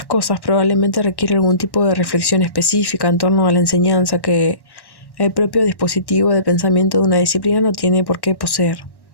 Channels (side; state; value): right; late; 1.1 ms